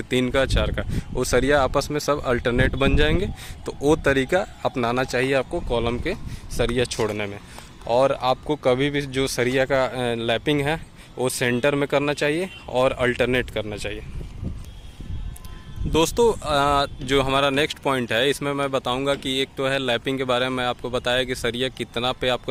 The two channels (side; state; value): both; identical; correlation 1.00